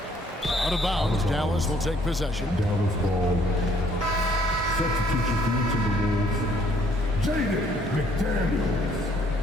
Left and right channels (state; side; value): normal; both; correlation 0.64